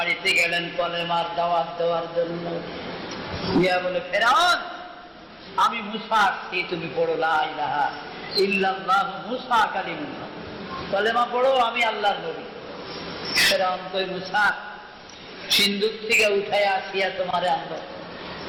গেলেন কলেমার দাওয়াত দেওয়ার জন্য। ইয়া বলে, ফেরাউন আমি মুসা আসছি, তুমি পড়ো লা ইলাহা ইল্লাল্লাহ মুসা কালিমুল্লাহ, কলেমা পড়ো আমি আল্লাহর নবী। ফেরাউন কই, মুসা সিন্ধুক থেকে উঠায় আসিয়া তোমারে আনলো,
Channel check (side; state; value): both; identical; correlation 1.00